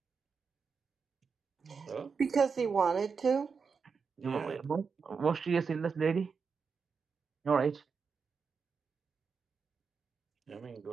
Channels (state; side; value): quieter; left; 5.5 dB